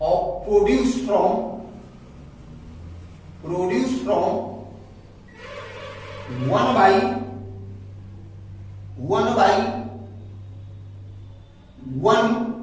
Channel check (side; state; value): both; identical; correlation 1.00